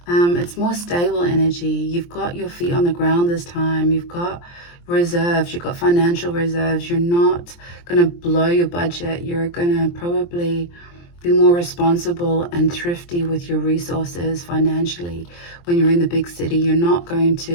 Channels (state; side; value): late; right; 23 ms